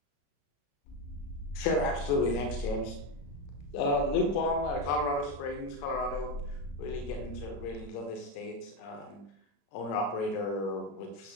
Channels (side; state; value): right; late; 35 ms